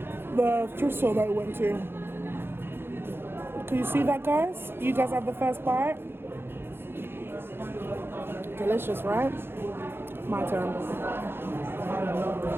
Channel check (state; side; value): late; left; 0.11 ms